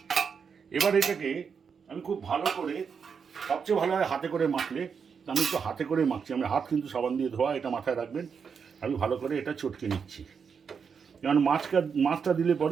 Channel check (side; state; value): left; quieter; 6.3 dB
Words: এবার এটাকে আমি খুব ভালো করে, সবচেয়ে ভালো হয় হাতে করে মাখলে, আমি একটু হাতে করে মাখছি। আমি হাত কিন্তু সাবান দিয়ে ধোয়া, এটা মাথায় রাখবেন। আমি ভালো করে এটা চটকে নিচ্ছি, কারণ মাছটা দিলে